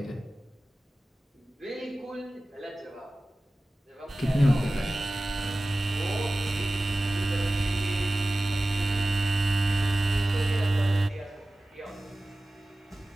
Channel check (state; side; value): normal; both; correlation 0.97